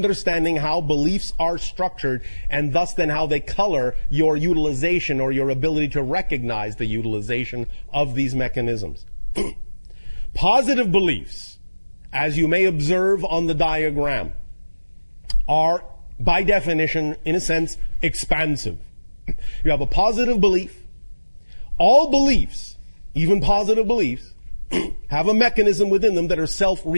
how beliefs are structured and thus then how they color your utilization or your ability to recognize the utilization of these mechanisms. Positive beliefs, as you may observe on the diagram, are by definition, in a sense, expansive. You have a positive belief. All beliefs, even positive beliefs, have a mechanism within them that are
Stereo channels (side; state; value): both; inverted; correlation -1.00